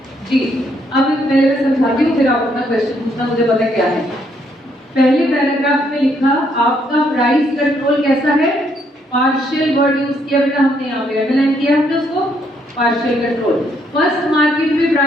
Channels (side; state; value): both; normal; correlation 0.72